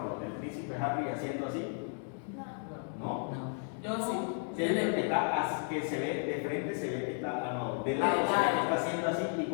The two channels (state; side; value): silent; right; 55 dB below the other